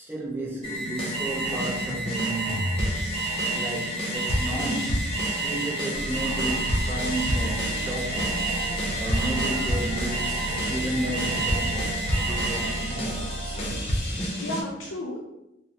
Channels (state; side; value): normal; both; correlation 0.51